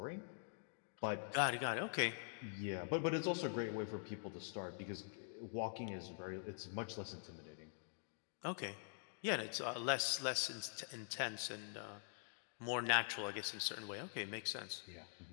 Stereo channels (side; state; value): right; silent; digital silence